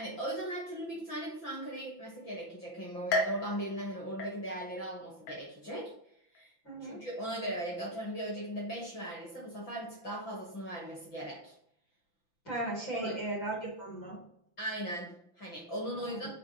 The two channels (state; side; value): late; right; 5.9 ms